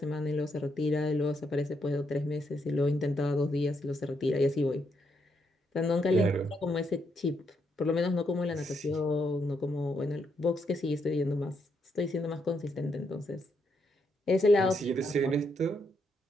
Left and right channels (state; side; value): normal; both; correlation 0.78